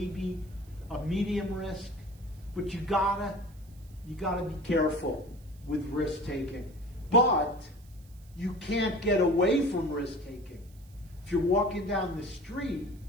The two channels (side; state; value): right; noise; hiss, 28 dB below the sound